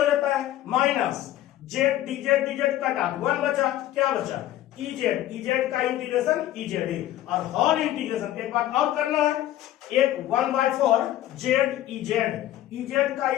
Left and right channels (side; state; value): right; quieter; 13.5 dB